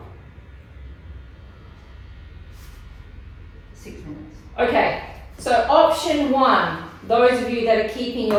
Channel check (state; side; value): identical; both; correlation 1.00